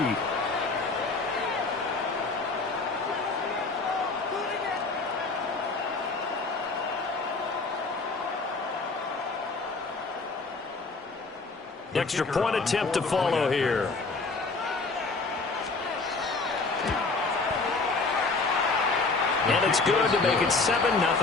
Extra point attempt to follow here. And it's good to make it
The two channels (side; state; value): right; quieter; 3.8 dB